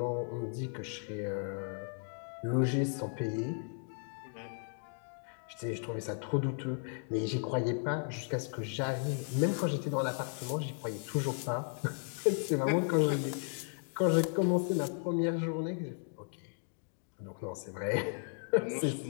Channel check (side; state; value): right; silent; 54 dB below the other